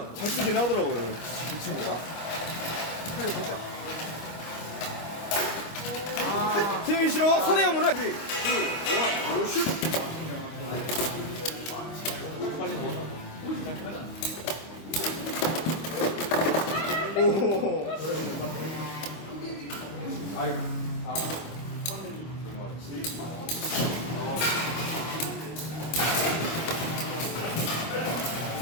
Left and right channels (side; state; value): right; late; 25 ms